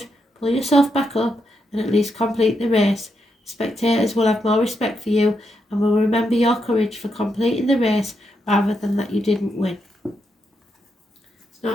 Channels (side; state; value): both; normal; correlation 0.82